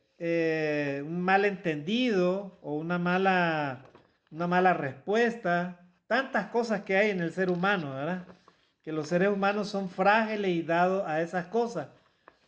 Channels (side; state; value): both; identical; correlation 1.00